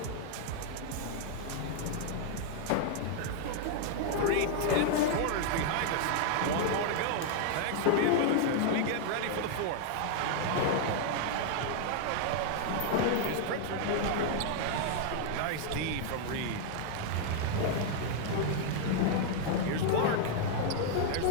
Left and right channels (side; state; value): both; different; correlation 0.00